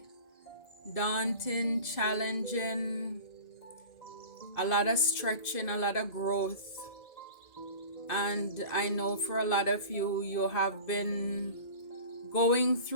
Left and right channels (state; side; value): late; right; 2.5 ms